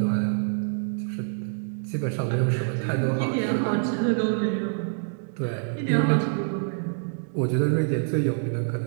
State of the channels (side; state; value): left; silent; digital silence